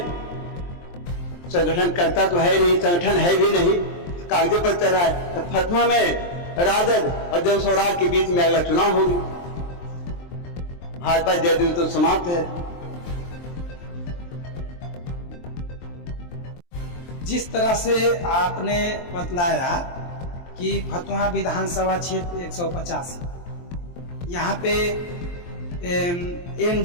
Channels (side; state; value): right; late; 23 ms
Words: संगठन करता तो है नहीं, संगठन है भी नहीं, कागजों पर चल रहा है। तो फतवा में राजद और जन स्वराज के बीच में अगला चुनाव होगी। भाजपा जदयू तो समाप्त है। जिस तरह से आपने बतलाया कि फतुहा विधानसभा क्षेत्र 185, यहाँ पे